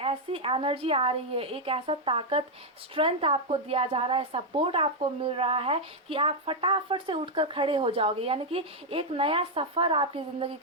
ऐसी एनर्जी आ रही है, एक ऐसा ताकत, स्ट्रेंथ आपको दिया जा रहा है, सपोर्ट आपको मिल रहा है कि आप फटाफट से उठकर खड़े हो जाओगे। यानी कि एक नया सफ़र आपकी ज़िंदगी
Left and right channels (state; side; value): normal; both; correlation 0.00